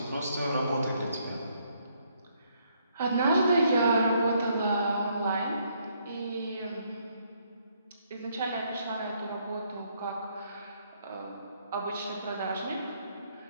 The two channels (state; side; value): inverted; both; correlation -0.71